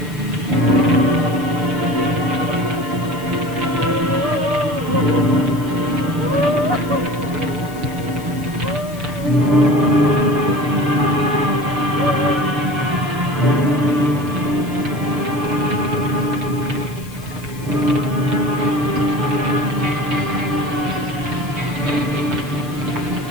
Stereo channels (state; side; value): noise; left; hiss, 20 dB below the sound